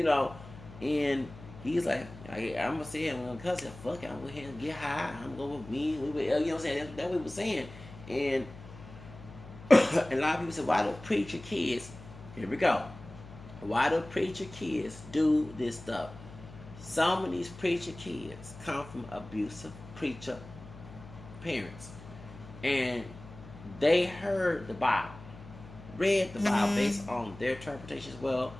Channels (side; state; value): left; noise; hum, 16 dB below the sound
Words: and he's like, I'm gonna say I'm gonna cuss it. Fuck it, I'm gonna go ahead and get high. I'm gonna go with me. You know what I'm saying? That's what we were saying, and a lot of people say, why do preacher kids? Here we go. Why do preacher kids do this stuff? Some of these preacher kids come from abusive preacher parents. And they heard the Bible, read the Bible based on their interpretation as well.